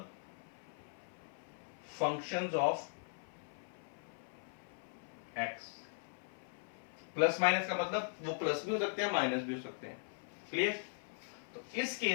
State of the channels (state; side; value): silent; right; 51 dB below the other